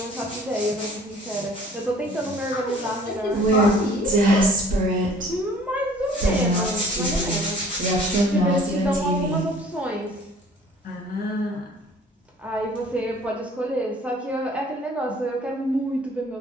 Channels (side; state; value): both; normal; correlation 0.52